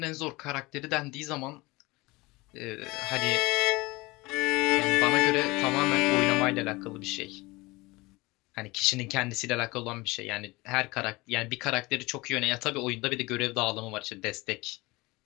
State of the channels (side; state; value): right; quieter; 22.6 dB